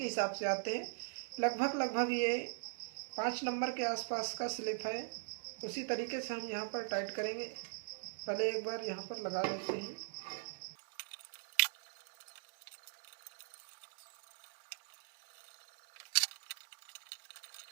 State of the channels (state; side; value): silent; left; digital silence